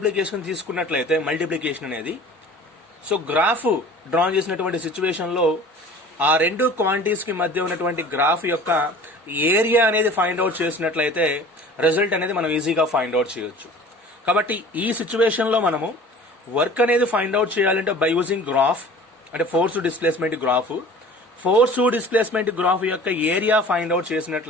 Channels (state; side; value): normal; both; correlation 0.44